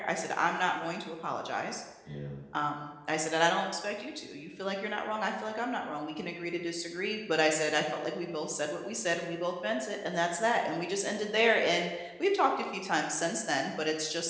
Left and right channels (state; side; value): identical; both; correlation 1.00